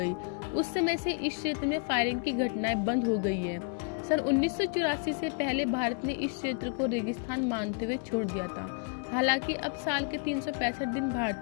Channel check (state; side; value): quieter; right; 39.6 dB